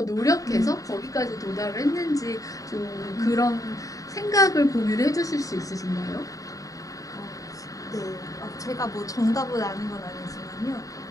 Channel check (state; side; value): late; right; 0.16 ms